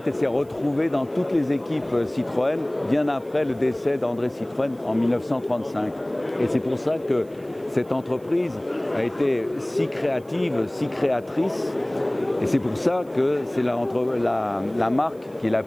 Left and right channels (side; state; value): right; noise; hiss, 30 dB below the sound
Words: elle s'est retrouvée dans toutes les équipes Citroën bien après le décès d'André Citroën en 1935. Et c'est pour ça que cette entreprise a été si créative, si créatrice. Et c'est pour ça que c'est la marque qui est la